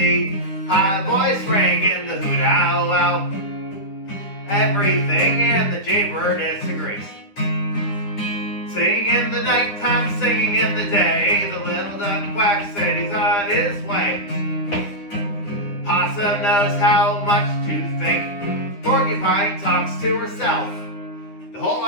High voice ringing the hoot owl owl. Everything in the jaybird disagrees. Singing in the nighttime, singing in the day. The little duck quack said he's on his way. Possum knows how much to think. Porcupine talks to herself. The whole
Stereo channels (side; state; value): right; late; 9.9 ms